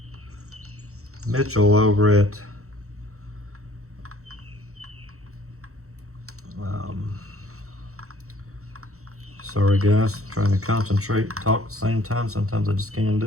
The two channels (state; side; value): late; left; 0.64 ms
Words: Mitchell over at sorry guys, trying to concentrate, talk at the same time. Sometimes I just can't